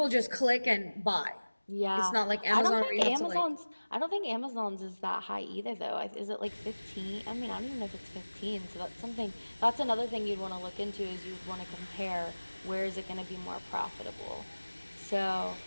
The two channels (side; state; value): both; inverted; correlation -1.00